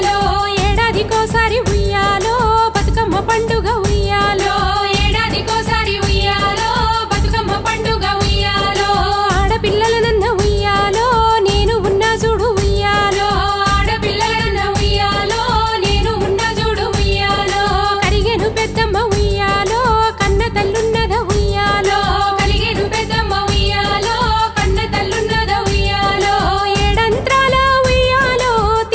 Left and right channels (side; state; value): both; identical; correlation 1.00